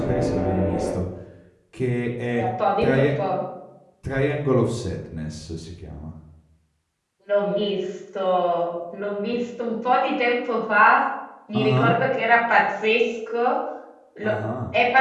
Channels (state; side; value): identical; both; correlation 1.00